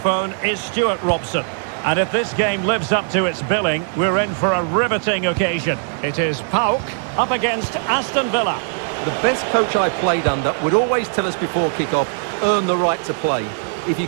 is Stuart Robson. And if this game lives up to its billing, we're in for a riveting occasion. It is PAOK up against Aston Villa. The best coach I played under would always tell us before kick-off, earn the right to play. If you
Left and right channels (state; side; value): silent; left; 66 dB below the other